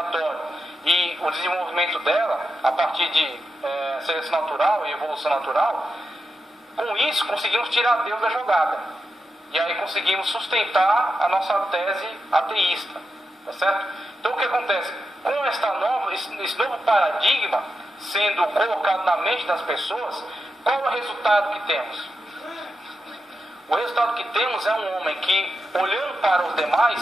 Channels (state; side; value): normal; both; correlation 0.88